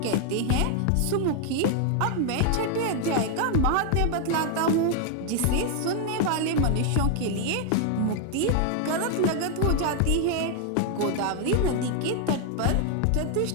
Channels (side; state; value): both; different; correlation 0.00